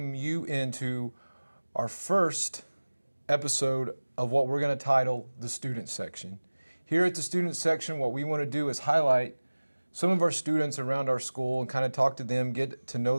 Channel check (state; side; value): inverted; both; correlation -1.00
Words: you into our first episode of what we're going to title the student section. Here at the student section, what we want to do is highlight some of our students around our school and kind of talk to them, get to know